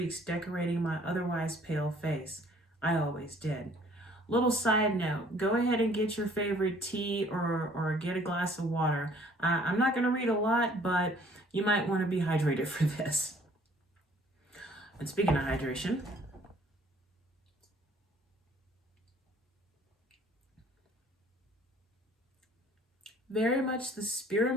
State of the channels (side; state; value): both; normal; correlation 0.57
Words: decorating my otherwise pale face. I always did. Little side note, go ahead and get your favorite tea or get a glass of water. I'm not going to read a lot, but you might want to be hydrated for this. And speaking of hydration, very much the